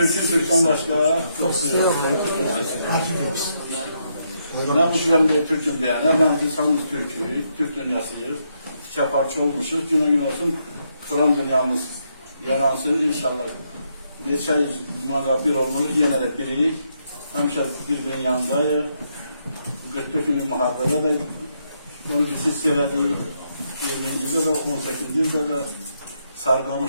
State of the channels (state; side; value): inverted; both; correlation -0.78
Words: başka çok yok. Ben bu dönem bir Türk'üm diyen, ben insanımız Türk dünyasıyız. Çaparçı olmuşuz. Günü gün olsun Kur'an dünyamız yaransın inşallah. Neçə yüz bir olmuş, yine de birik. Həmişə birbirinin yanındayıq. 44 günlük müharibədə də onu biz hiss elədik. 20-ci də 18-ci də